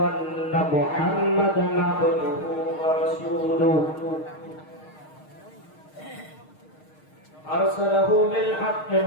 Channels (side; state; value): right; late; 6.5 ms